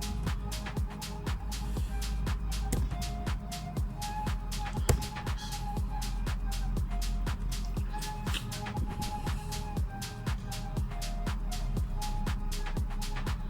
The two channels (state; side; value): identical; both; correlation 1.00